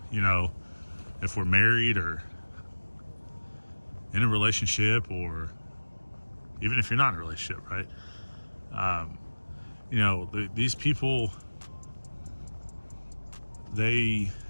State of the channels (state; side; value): inverted; both; correlation -1.00